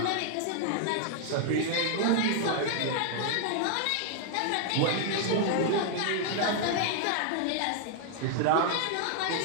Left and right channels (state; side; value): different; both; correlation 0.00